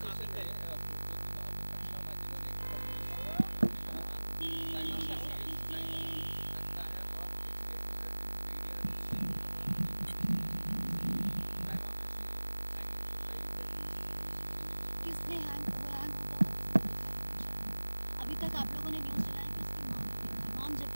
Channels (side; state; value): both; inverted; correlation -1.00